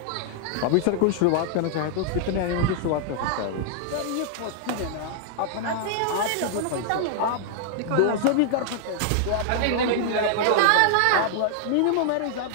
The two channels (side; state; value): both; different; correlation -0.01